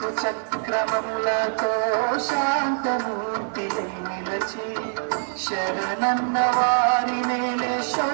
చక్రములతో శాంతమూర్తి నిలచి శరణన్న వారి నేలే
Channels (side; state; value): left; silent; 62 dB below the other